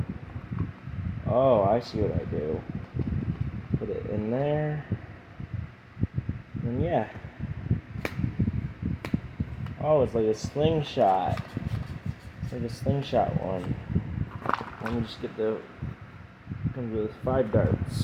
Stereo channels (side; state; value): both; identical; correlation 1.00